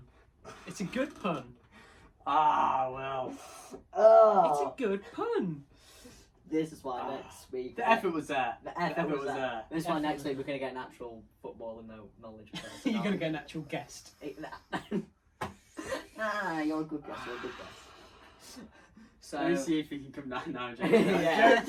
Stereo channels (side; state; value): both; identical; correlation 1.00